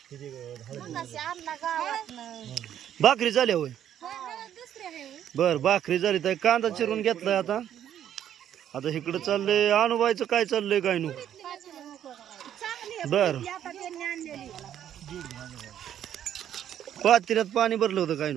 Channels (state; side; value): quieter; left; 10.4 dB